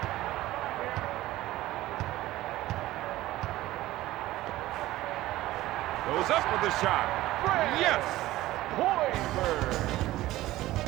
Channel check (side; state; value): left; quieter; 16.3 dB